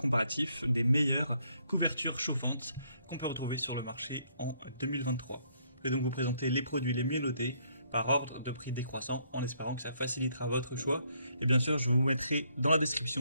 des meilleures couvertures chauffantes qu'on peut retrouver sur le marché en 2023. Je vais donc vous présenter les produits les mieux notés par ordre de prix décroissant, en espérant que ça facilitera votre choix. Et bien sûr, je vous mettrai dans la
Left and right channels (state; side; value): inverted; both; correlation -0.70